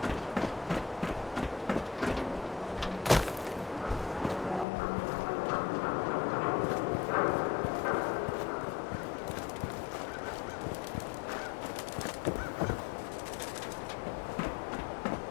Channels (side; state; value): right; drops out; at 4.7 s